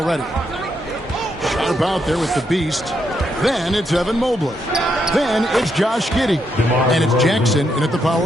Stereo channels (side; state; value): both; normal; correlation 0.79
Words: Sharp out there with the beast. Then it's Evan Mobley. Then it's Josh Giddey. And it's Jackson in at the